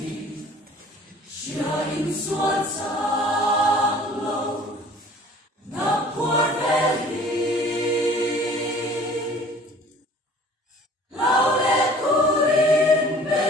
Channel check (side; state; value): both; normal; correlation 0.49